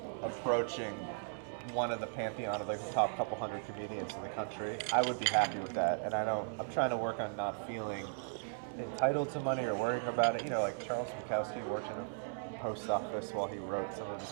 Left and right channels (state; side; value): silent; left; digital silence